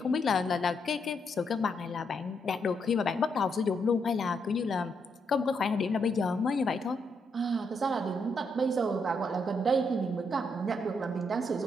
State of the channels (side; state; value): both; normal; correlation 0.78